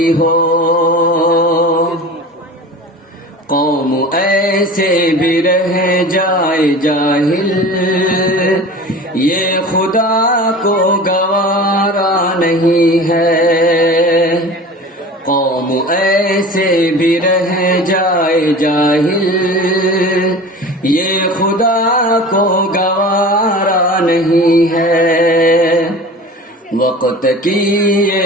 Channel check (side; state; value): both; normal; correlation 0.37